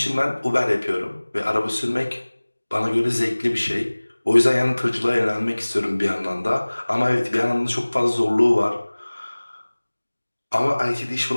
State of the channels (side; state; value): both; inverted; correlation -1.00